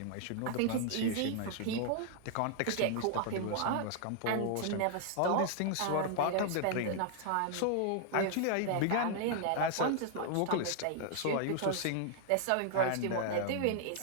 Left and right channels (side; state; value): both; different; correlation -0.01